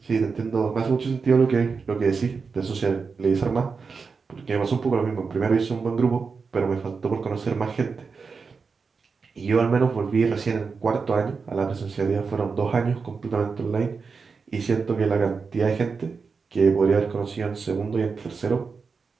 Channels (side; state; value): left; quieter; 5.0 dB